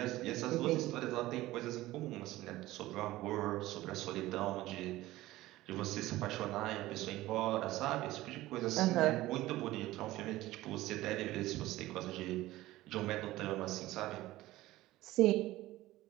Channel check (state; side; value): quieter; left; 17.0 dB